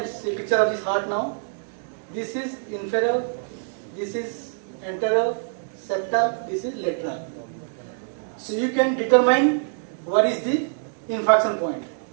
picture of this heart now. This is inferior, this is anterior, septal, this is lateral. So you can determine what is the infarction point.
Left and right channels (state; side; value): silent; left; digital silence